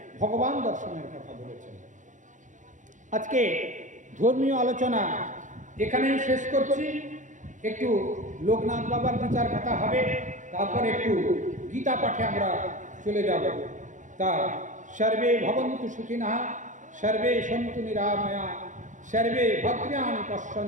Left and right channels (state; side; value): late; left; 0.36 ms